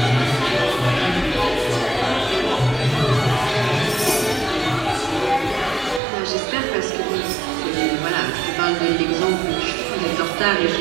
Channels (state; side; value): drops out; left; at 6.0 s